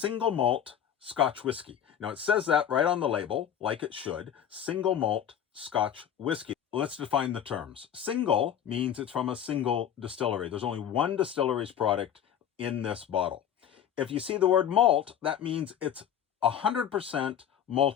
malt Scotch whiskey. Now, it says that right on the label, like it should, single malt Scotch whiskey. Let's define the terms. Single means it's from a single distillery. There's only one distillery's product in this bottle. If you see the word malt, that means it's 100%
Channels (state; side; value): quieter; right; 9.3 dB